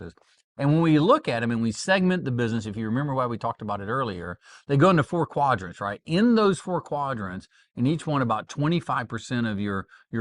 And when we look at them and we segment the business, if you remember why we talked about it earlier, they go into 4 quadrants, right? In those 4 quadrants, in each one, about 25% of your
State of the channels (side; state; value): both; identical; correlation 1.00